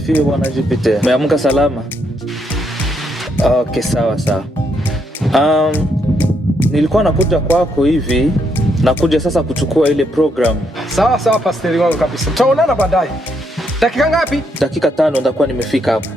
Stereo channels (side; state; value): both; normal; correlation 0.76